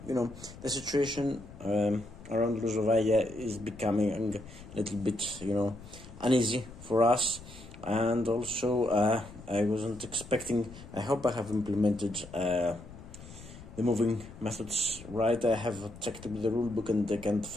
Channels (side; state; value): left; noise; rumble, 17 dB below the sound